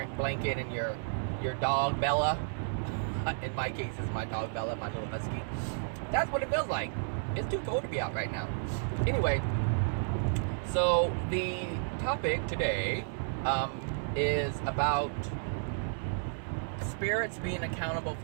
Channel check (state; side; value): silent; left; 56 dB below the other